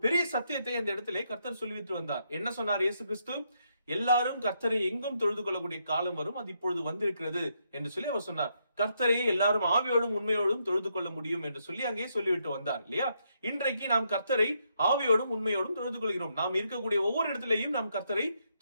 பெரிய சத்தியத்தை அந்த இடத்திலே கர்த்தர் சொல்லிவிட்டு வந்தார். என்ன சொன்னார் இயேசு கிறிஸ்து? எல்லாரும் கர்த்தரை எங்கும் தொழுது கொள்ளக்கூடிய காலம் வரும், அது இப்பொழுது வந்திருக்கிறது என்று சொல்லி அவர் சொன்னார். கர்த்தரையே எல்லாரும் ஆவியோடும் உண்மையோடும் தொழுது கொள்ள முடியும் என்று சொல்லி அங்கே சொல்லிவிட்டு வந்தார் இல்லையா? இன்றைக்கு நாம் கர்த்தரை ஆவியோடும் உண்மையோடும் தொழுது கொள்கிறோம். நாம் இருக்கக்கூடிய ஒவ்வொரு இடத்திலேயும் நாம் கர்த்தரை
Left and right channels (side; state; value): both; inverted; correlation -0.77